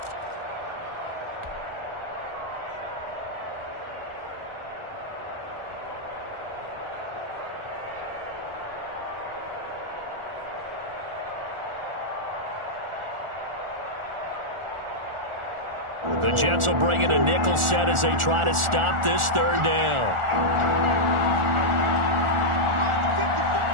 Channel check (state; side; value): late; left; 1.4 ms